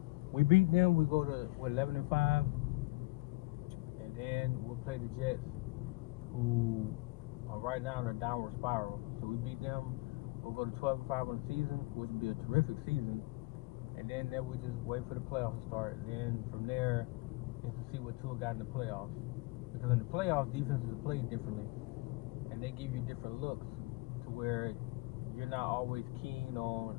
We beat them, we go to 11-5, and then we'll play the Jets, who are right now in a downward spiral. So we beat them, we'll go to 12-5 on the season, which would be a terrific season. And then we just wait for the playoffs to start, and then from there is to see what Tua got in the playoffs. Because in the playoffs, defenses play differently, and they give you different looks to where you're not always keen on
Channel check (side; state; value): right; quieter; 23.3 dB